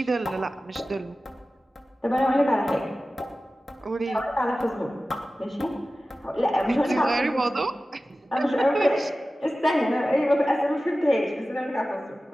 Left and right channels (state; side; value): normal; both; correlation 0.95